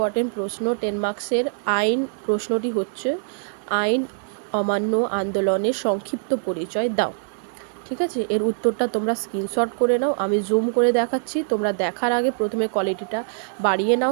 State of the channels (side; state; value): left; silent; 63 dB below the other